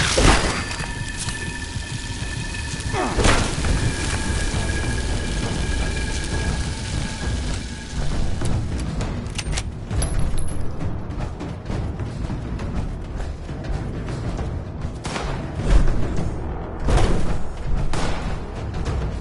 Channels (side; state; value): both; identical; correlation 1.00